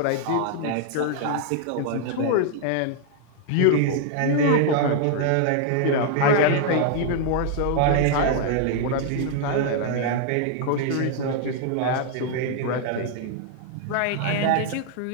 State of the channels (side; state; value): both; different; correlation 0.00